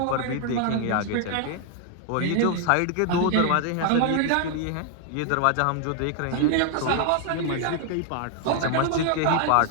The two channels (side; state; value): both; different; correlation 0.00